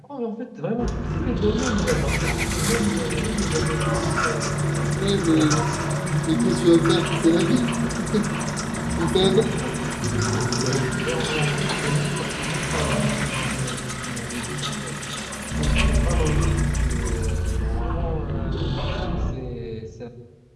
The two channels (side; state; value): both; identical; correlation 1.00